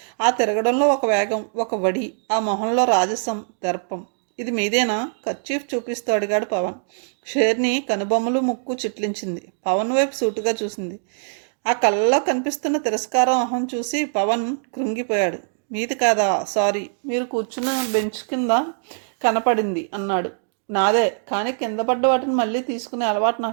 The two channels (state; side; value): silent; left; digital silence